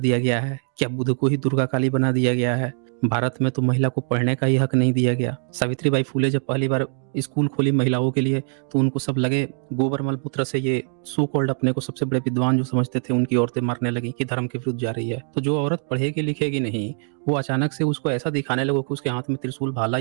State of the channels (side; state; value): left; silent; 56 dB below the other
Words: गया है? क्या बुध को ही दुर्गा काली बना दिया गया है? भारत में तो महिला को पढ़ने का ही हक नहीं दिया गया। सावित्रीबाई फुले जब पहली बार स्कूल खोली महिलाओं के लिए तो उनको सब लगे गोबरमल पुत्र से ये सो कॉल्ड अपने को सबसे बड़े विद्वान जो समझते थे उनकी औरतें मरने लगी कि धर्म के विरुद्ध जा रही है। तो जो औरत पढ़ेगी लिखेगी नहीं वो अचानक से उसको ऐसा दिखाने लगो कि उसके हाथ में त्रिशूल भाला